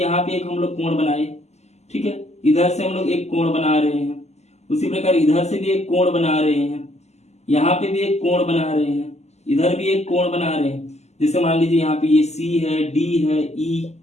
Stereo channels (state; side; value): late; right; 0.32 ms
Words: यहाँ पे एक हम लोग कोण बनाए। ठीक है, इधर से हम लोग एक कोण बना रहे हैं, उसी प्रकार इधर से भी एक कोण बना रहे हैं, यहाँ पे भी एक कोण बना रहे हैं, इधर भी एक कोण बना रहे हैं। जैसे मान लीजिए यहाँ पे ये सी है, डी है, ई,